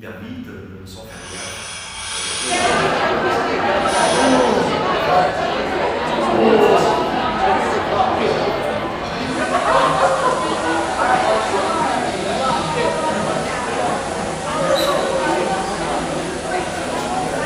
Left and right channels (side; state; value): both; identical; correlation 1.00